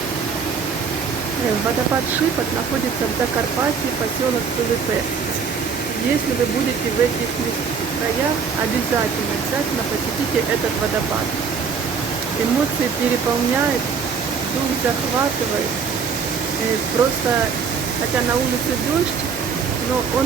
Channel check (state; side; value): quieter; left; 5.9 dB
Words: Водопад Шипот находится в Закарпатье, поселок Пилипе. Если вы будете в этих краях, обязательно посетите этот водопад. Эмоции переполняют, дух захватывает. Просто, хотя на улице дождь, но он